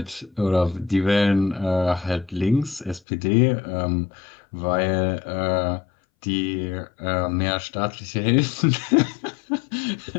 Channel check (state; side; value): drops out; right; at 3.0 s